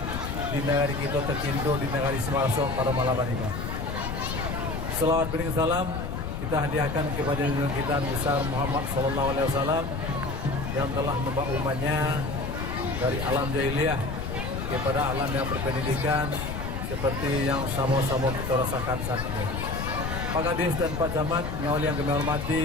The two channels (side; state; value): left; noise; rumble, 4 dB below the sound